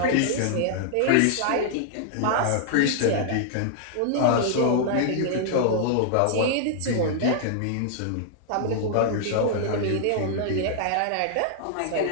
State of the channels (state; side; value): different; both; correlation -0.01